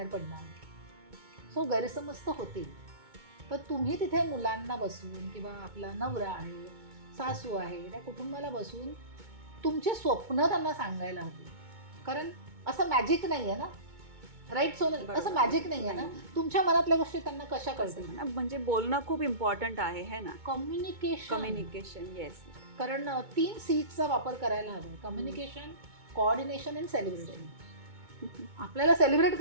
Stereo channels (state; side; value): late; left; 2.2 ms